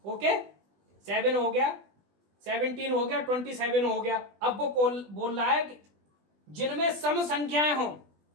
ओके, 7 हो गया, 17 हो गया, 27 हो गया। अब वो बोल रहा है जिनमें सम संख्याएं हों,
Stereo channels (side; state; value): left; late; 20 ms